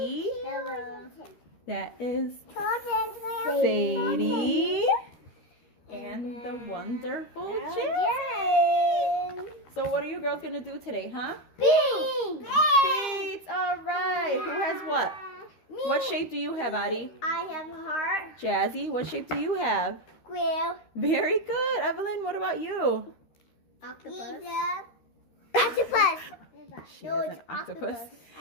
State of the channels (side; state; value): right; late; 13 ms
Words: Hello. That is Sadie. And the wonderful Jen. So what are you girls going to do today, huh? Beads. Beads. All right. Who has what? Me. What shape do you have, Addie? I have a heart. Jazzy, what shape do you have? Square. Very good. Evelyn, what about you? Octopus. Octopus. She has an octopus.